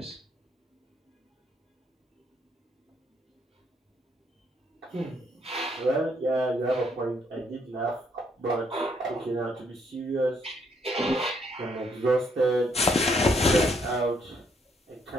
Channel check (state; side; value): normal; both; correlation 0.71